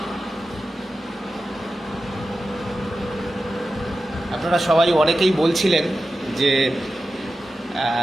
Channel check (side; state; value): both; normal; correlation 0.93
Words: আপনারা সবাই অনেকেই বলছিলেন যে